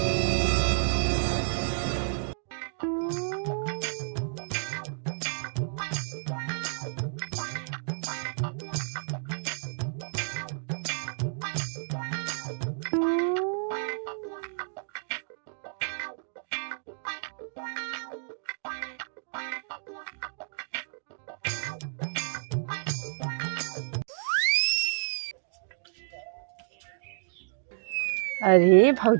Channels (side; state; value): left; silent; digital silence